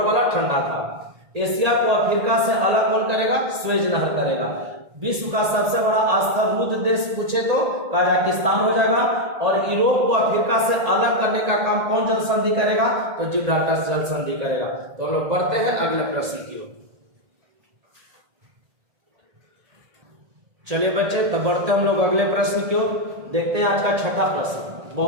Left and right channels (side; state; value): left; late; 1.8 ms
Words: वाला ठंडा था। एशिया को अफ्रीका से अलग कौन करेगा? स्वेज नहर करेगा। विश्व का सबसे बड़ा स्थल रुद्ध देश पूछे तो कजाकिस्तान हो जाएगा। और यूरोप को अफ्रीका से अलग करने का काम कौन जल संधि करेगा? तो जिब्राल्टर जल संधि करेगा। तो हम लोग बढ़ते हैं अगले प्रश्न की ओर। चलिए बच्चे, तो बढ़ते हम लोग अगले प्रश्न की ओर। देखते हैं आज का छठा प्रश्न,